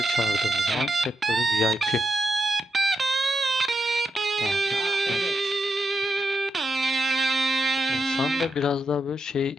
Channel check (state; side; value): normal; both; correlation 0.85